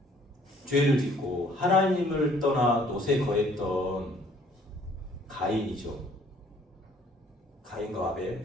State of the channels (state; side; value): normal; both; correlation 0.59